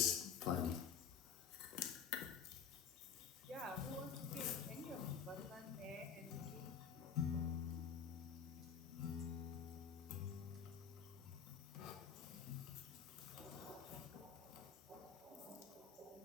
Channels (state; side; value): quieter; right; 7.0 dB